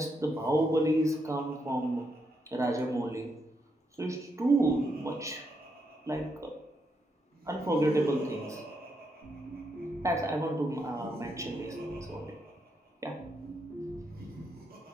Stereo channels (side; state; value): both; normal; correlation 0.80